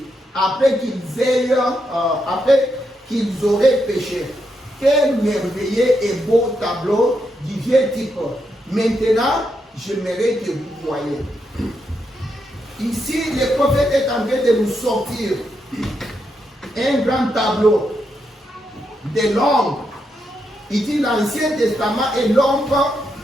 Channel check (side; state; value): both; normal; correlation 0.82